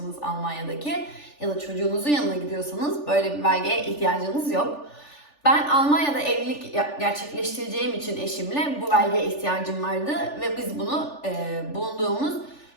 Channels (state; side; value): late; right; 3.4 ms